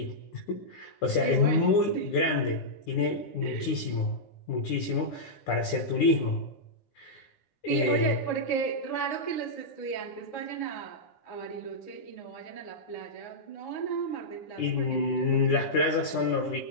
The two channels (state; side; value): late; right; 9.8 ms